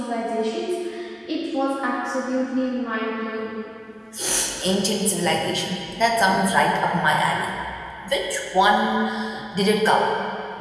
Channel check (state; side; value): identical; both; correlation 1.00